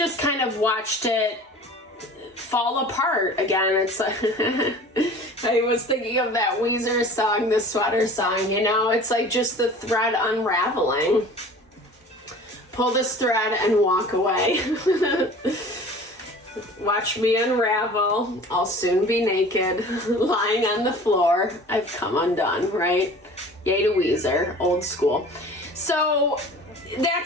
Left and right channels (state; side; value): normal; both; correlation 0.43